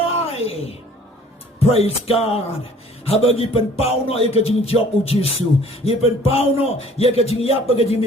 praise God habagi pen pau no ye ka jing job u Jesu ye pen pau no ye ka jing yap ka jing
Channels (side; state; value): both; normal; correlation 0.53